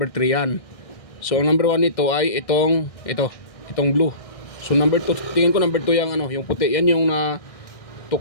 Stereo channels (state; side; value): late; right; 1.6 ms